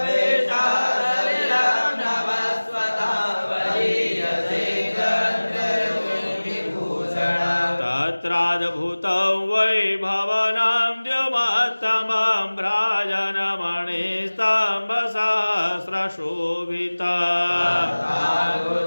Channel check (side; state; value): both; inverted; correlation -1.00